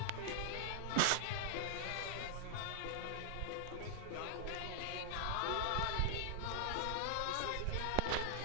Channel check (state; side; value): different; both; correlation -0.01